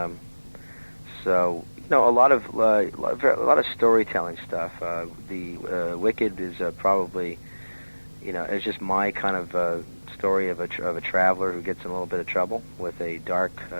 So, a lot of storytelling stuff. The Wicked is probably, it's just my kind of story of a traveler who gets in a little bit of trouble with a dark,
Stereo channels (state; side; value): inverted; both; correlation -1.00